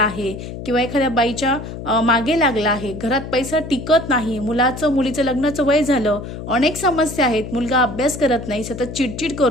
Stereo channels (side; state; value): left; noise; hum, 9 dB below the sound